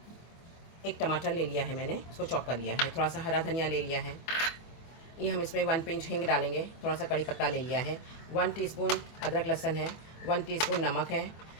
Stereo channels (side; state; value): right; late; 24 ms